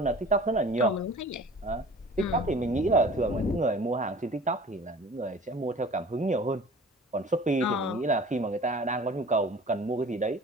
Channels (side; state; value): both; normal; correlation 0.44